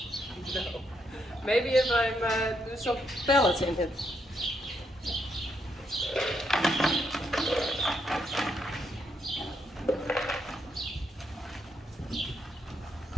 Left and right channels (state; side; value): normal; both; correlation 0.78